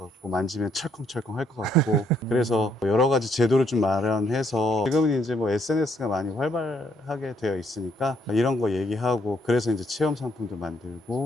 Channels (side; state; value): both; normal; correlation 0.71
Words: 만지면 철컹철컹 할 것 같고 그래서 여러 가지 제도를 좀 마련해서 지금은 이제 뭐 SNS가 많이 활발하게 되어 있으니까 이런 거 얘기하고 그래서 이제 체험 상품도